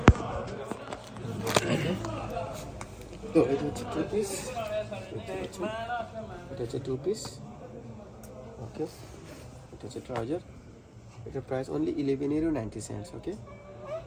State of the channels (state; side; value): identical; both; correlation 1.00